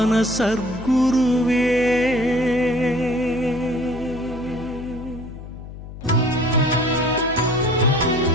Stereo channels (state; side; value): noise; left; hum, 13 dB below the sound